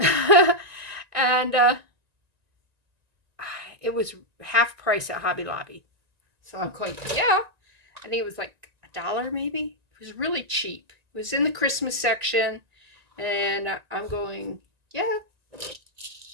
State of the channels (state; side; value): late; left; 1.9 ms